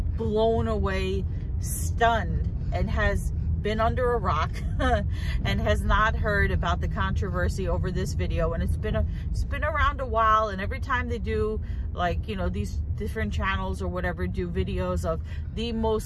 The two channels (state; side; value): identical; both; correlation 1.00